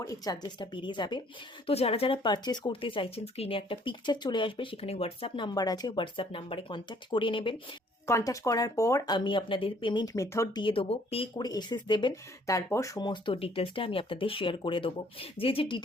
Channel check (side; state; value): both; normal; correlation 0.61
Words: এই চার্জেসটা বেরিয়ে যাবে। তো যারা যারা পারচেস করতে চাইছেন, স্ক্রিনে একটা পিকচার চলে আসবে, সেখানে হোয়াটসঅ্যাপ নাম্বার আছে, হোয়াটসঅ্যাপ নাম্বারে কন্ট্যাক্ট করে নেবেন। কন্ট্যাক্ট করার পর আমি আপনাদের পেমেন্ট মেথড দিয়ে দেবো, পে করে এসএস দেবেন। তারপর সমস্ত ডিটেলসটা আমি আপনাদের শেয়ার করে দেবো। যে যে